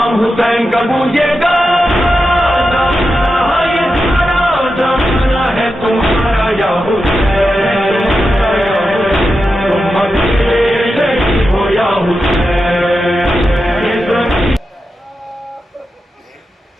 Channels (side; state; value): both; normal; correlation 0.89